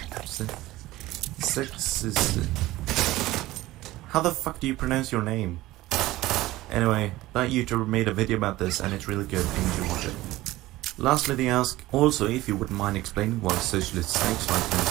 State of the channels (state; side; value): quieter; left; 17.4 dB